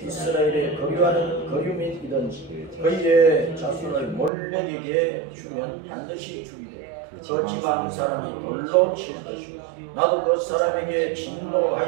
이스라엘에 거류하는 거류민이든지 그의 자손을 몰렉에게 주면 반드시 죽이되 그 지방 사람이 돌로 칠 것이요 나도 그 사람에게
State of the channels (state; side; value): drops out; left; at 4.3 s